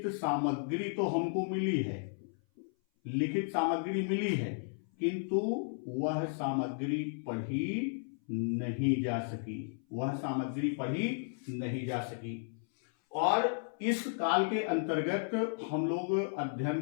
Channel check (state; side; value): silent; right; 55 dB below the other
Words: सामग्री तो हमको मिली है, लिखित सामग्री मिली है, किंतु वह सामग्री पढ़ी नहीं जा सकी, वह सामग्री पढ़ी नहीं जा सकी। और इस काल के अंतर्गत हम लोग